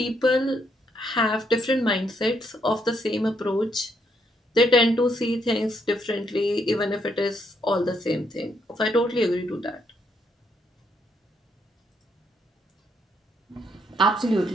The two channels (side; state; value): both; normal; correlation 0.74